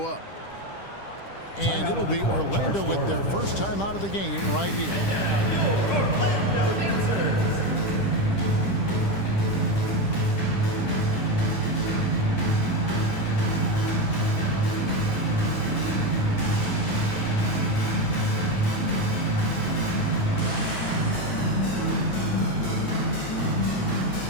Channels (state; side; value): late; right; 10 ms